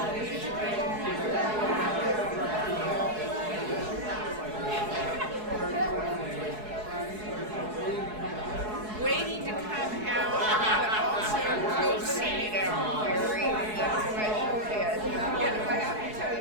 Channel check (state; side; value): late; left; 4.7 ms